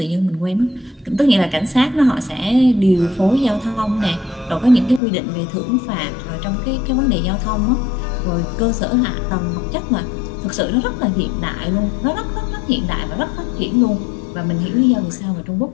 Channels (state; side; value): drops out; right; at 5.0 s